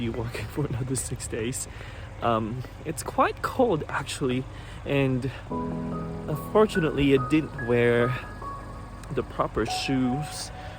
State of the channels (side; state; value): both; identical; correlation 1.00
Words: working for another 6 days. It's quite cold actually, and unfortunately I didn't wear the proper shoes